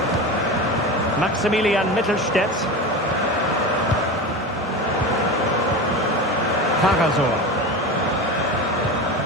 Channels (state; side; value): normal; both; correlation 0.26